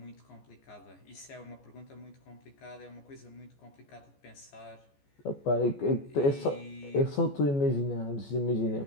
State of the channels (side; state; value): right; late; 14 ms